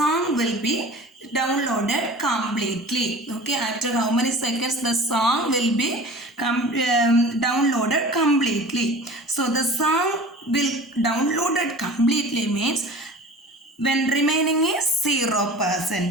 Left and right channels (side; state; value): both; normal; correlation 0.40